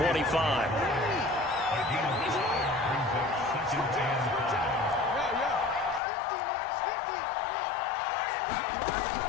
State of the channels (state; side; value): drops out; right; at 6.0 s